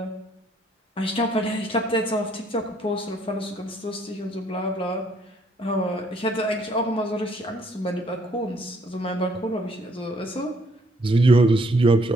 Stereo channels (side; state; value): both; normal; correlation 0.66